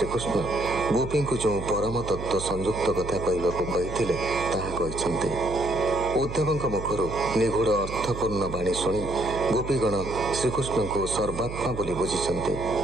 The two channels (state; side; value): noise; right; hum, 9 dB below the sound